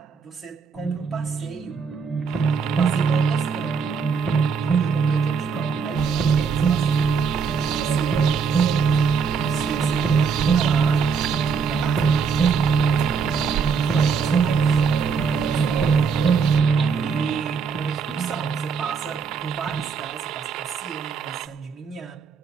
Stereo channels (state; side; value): quieter; left; 5.8 dB